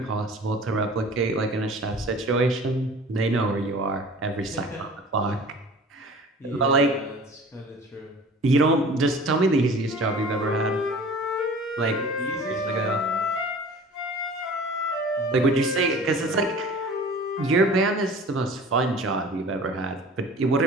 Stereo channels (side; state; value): both; normal; correlation 0.43